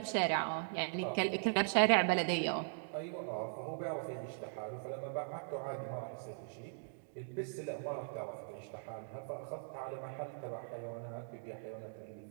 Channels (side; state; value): left; silent; digital silence